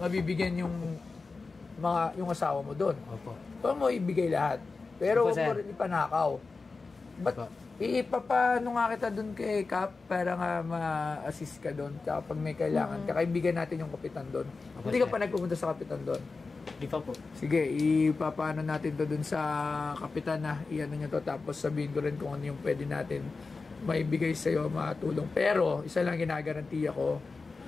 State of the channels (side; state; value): right; quieter; 4.1 dB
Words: yung asawa mo doon. Opo. Huwag mo ibigay lahat. Pero Opo, huwag mo sir. rin ipanakaw. Ba't Opo. ipapano nga kita doon kay Cap para nga ma-assist ka doon kapag may kailangan. Kakaibigan natin yung kapitan doon. Opo, Hindi ka sir. pa nagpupunta sa kapitan doon. Di pa po. Sige, ipapano natin to doon sa kapitan na iano nyo to. Tapos sabihin ko rin kung ano yung pwede natin maibigay sa'yo, matulong. Pero, isa lang ginagarantiya ko,